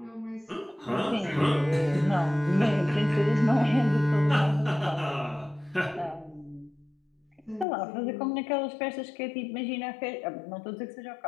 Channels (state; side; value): drops out; right; at 7.7 s